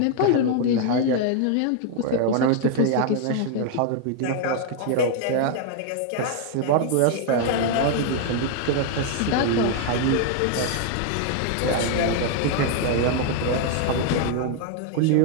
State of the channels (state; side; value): different; both; correlation 0.00